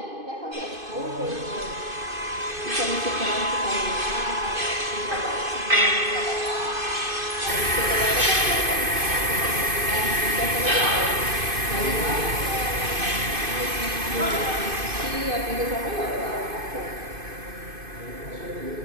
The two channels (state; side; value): late; left; 2.5 ms